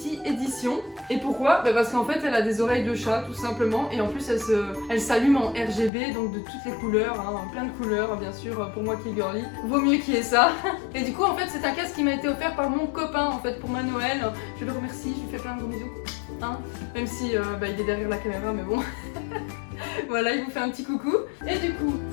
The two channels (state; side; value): drops out; right; at 5.9 s